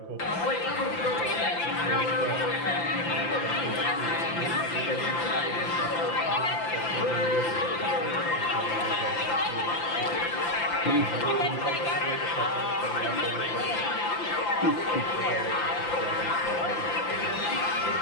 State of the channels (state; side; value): late; right; 5.9 ms